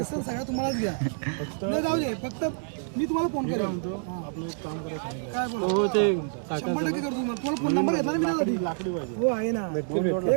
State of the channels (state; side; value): silent; left; 60 dB below the other